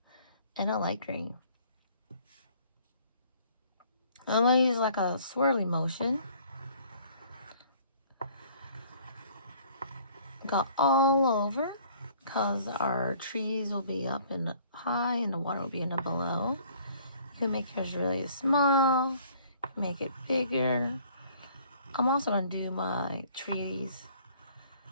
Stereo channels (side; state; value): both; inverted; correlation -0.57